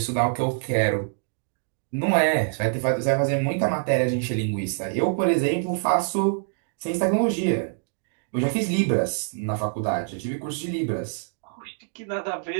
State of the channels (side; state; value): left; silent; digital silence